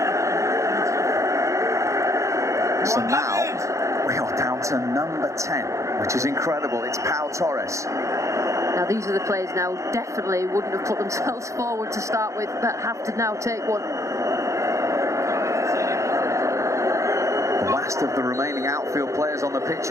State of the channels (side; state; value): left; late; 0.15 ms